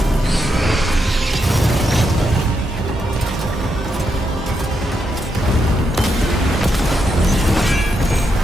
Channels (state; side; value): normal; both; correlation 0.82